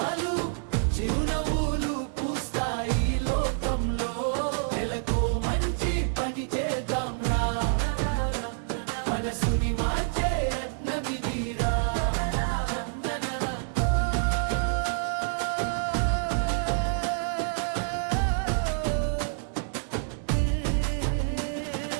చిరునవ్వులు పూస్తాయి లోకంలో. నెలకో మంచి పని చేద్దాం రా, మనసుని మార్చే యత్నమిదిరా.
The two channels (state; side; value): silent; left; 60 dB below the other